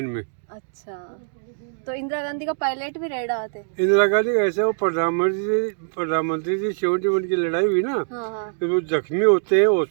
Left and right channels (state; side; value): silent; left; digital silence